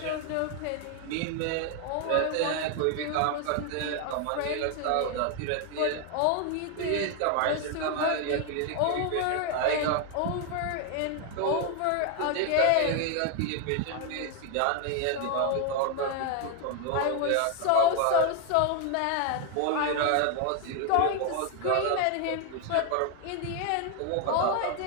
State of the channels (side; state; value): both; different; correlation 0.01